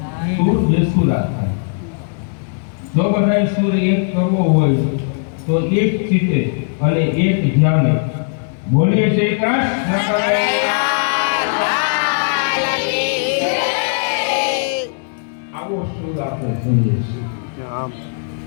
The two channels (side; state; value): right; silent; digital silence